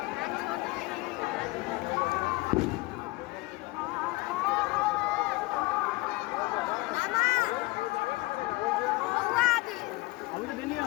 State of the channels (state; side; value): quieter; right; 22.0 dB